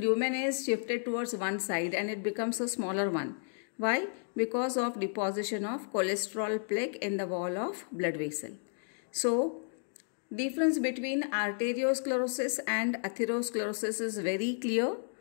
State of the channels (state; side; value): silent; right; digital silence